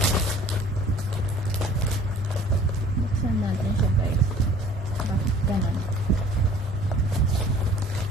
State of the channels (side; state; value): both; normal; correlation 0.51